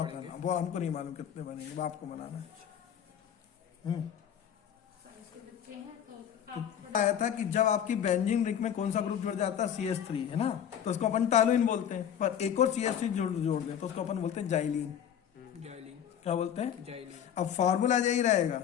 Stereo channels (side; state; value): right; quieter; 9.2 dB